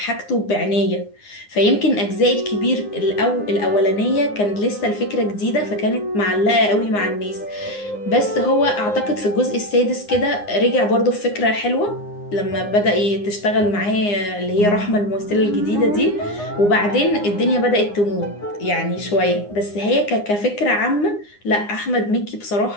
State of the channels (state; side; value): late; right; 9.7 ms